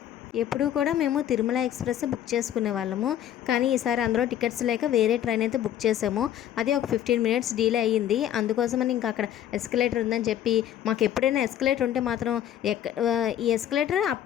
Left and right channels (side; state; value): right; quieter; 11.0 dB